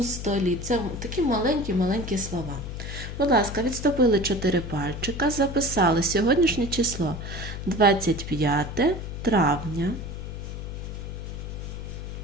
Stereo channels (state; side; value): noise; left; hum, 7 dB below the sound